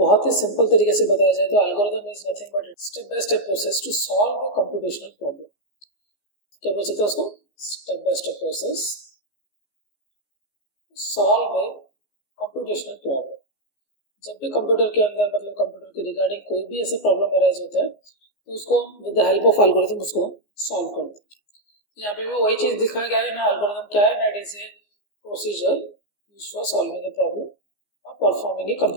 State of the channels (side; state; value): right; late; 14 ms